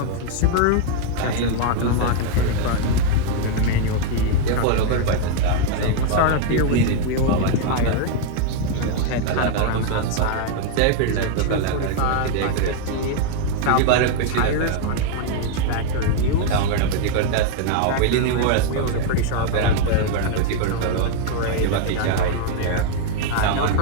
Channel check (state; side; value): different; both; correlation 0.00